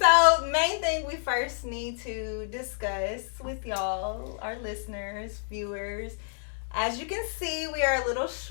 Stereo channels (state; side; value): silent; right; 59 dB below the other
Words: main thing we first need to discuss with y'all, our listeners, viewers. As you can see, we are a little